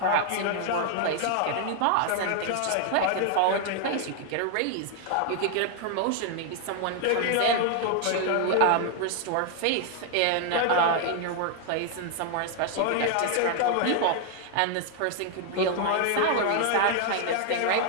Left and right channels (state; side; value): different; both; correlation 0.00